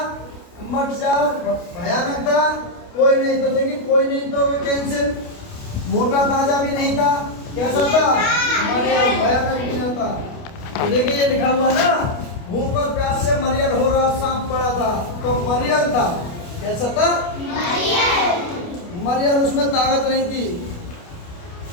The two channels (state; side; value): late; right; 29 ms